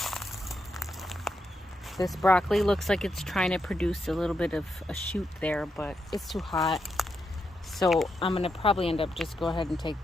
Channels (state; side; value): normal; both; correlation 0.84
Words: This broccoli looks like it's trying to produce a little bit of a shoot there, but it's too hot. So I'm going to probably end up just go ahead and take